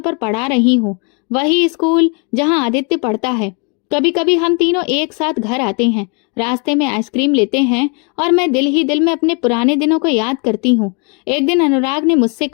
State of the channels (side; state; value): right; quieter; 35.0 dB